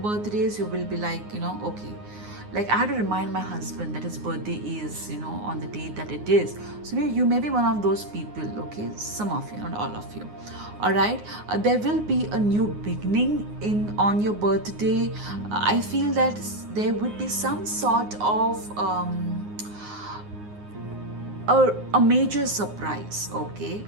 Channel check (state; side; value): late; left; 9.6 ms